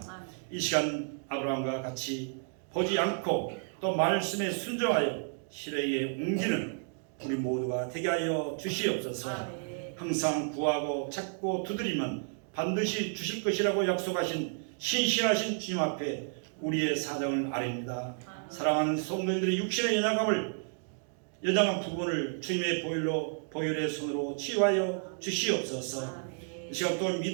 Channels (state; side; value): silent; left; 57 dB below the other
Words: 이 시간 아브라함과 같이 보지 않고 또 말씀에 순종하여 실행에 옮기는 우리 모두가 되게 하여 주시옵소서. 항상 구하고 찾고 두드리면 반드시 주실 것이라고 약속하신 신실하신 주님 앞에 우리의 사정을 아뢰입니다. 사랑하는 성도님들의 육신의 연약한 부분을 주님의 보혈의 손으로 치유하여 주시옵소서. 이 시간 또한